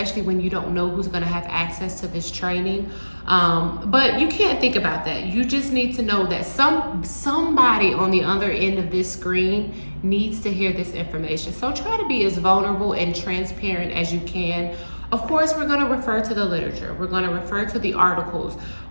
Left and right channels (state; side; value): inverted; both; correlation -1.00